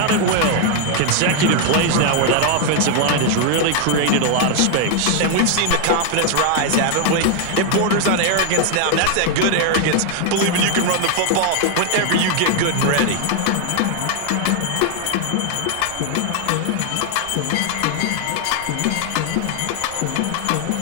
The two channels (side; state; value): both; different; correlation 0.00